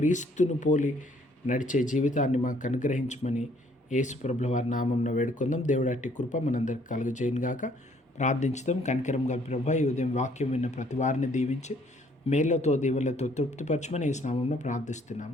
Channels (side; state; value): both; normal; correlation 0.63